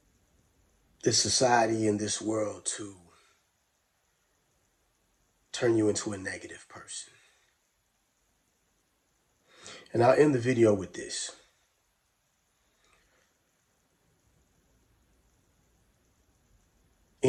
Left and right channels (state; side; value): identical; both; correlation 1.00